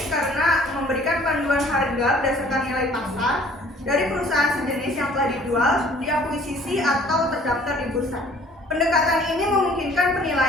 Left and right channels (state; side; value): normal; both; correlation 0.54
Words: karena memberikan panduan harga berdasarkan nilai pasar dari perusahaan sejenis yang telah dijual, diakuisisi atau terdaftar di bursa. Pendekatan ini memungkinkan